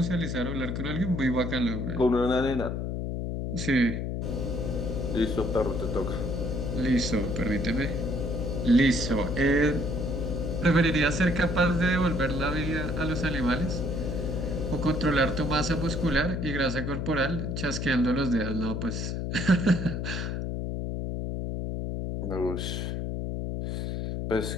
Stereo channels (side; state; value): left; noise; hum, 2 dB below the sound